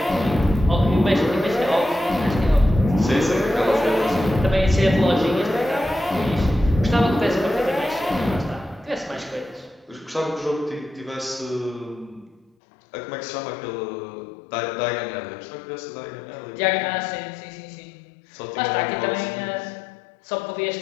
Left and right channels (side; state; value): right; drops out; at 12.5 s